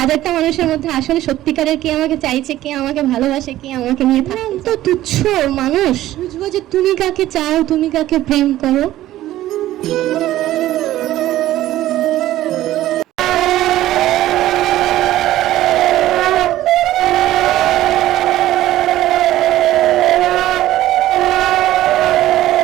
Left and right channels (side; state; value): left; quieter; 14.4 dB